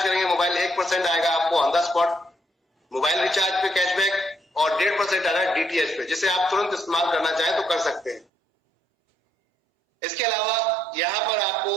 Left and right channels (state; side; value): drops out; left; at 8.2 s